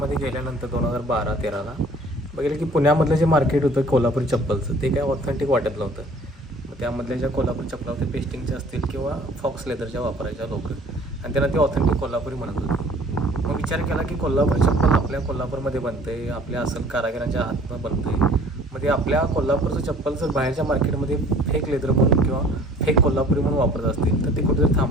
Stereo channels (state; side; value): normal; both; correlation 0.52